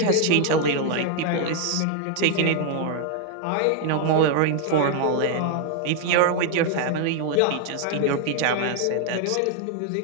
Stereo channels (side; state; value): both; different; correlation 0.00